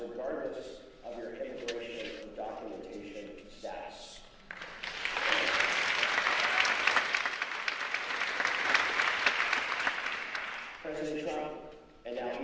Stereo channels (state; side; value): identical; both; correlation 1.00